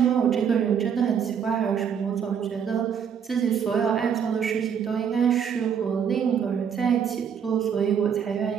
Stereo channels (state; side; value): quieter; left; 7.6 dB